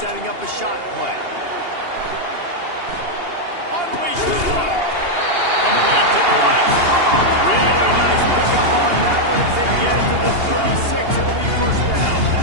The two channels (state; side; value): late; left; 2.8 ms